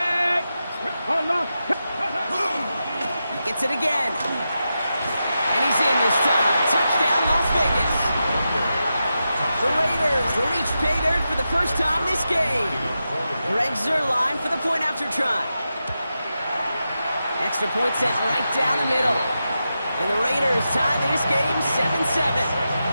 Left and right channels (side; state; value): both; inverted; correlation -0.89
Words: Unlock. He gets it again. And he's in this time. Touchdown, Las Vegas. The Raiders reach pay dirt for the first time this game. Greg Zuerlein for the point after try. Extra point set right down the middle. And the Raiders tie this game 7-7.